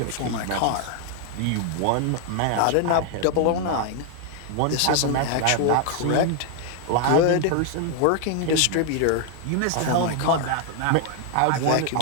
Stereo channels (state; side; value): different; both; correlation 0.00